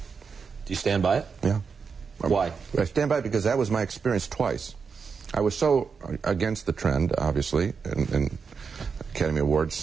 Do you stand by it? Yeah. Why? I stand by it because that was my experience twice. I was so against the trend, obviously, and Academy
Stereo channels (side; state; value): left; quieter; 5.6 dB